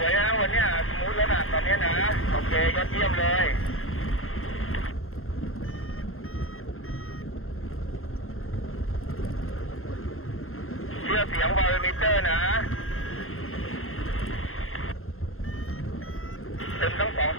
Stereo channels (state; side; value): late; right; 0.61 ms